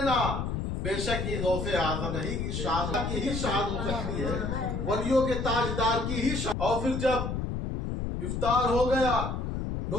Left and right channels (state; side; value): noise; left; rumble, 2 dB below the sound